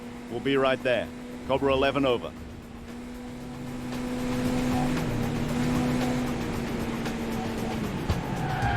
We'll be right there. Cobra 11 over.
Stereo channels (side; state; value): both; identical; correlation 1.00